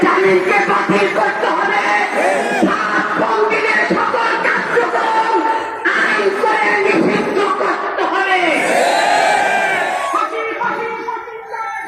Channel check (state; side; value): identical; both; correlation 1.00